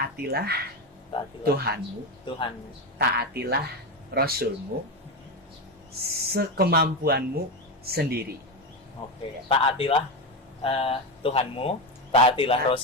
Taatilah Tuhanmu, Tuhan. taatilah Rasulmu sekemampuanmu sendiri. Oke, taatilah Tuhanmu, taatilah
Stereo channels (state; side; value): normal; both; correlation 0.14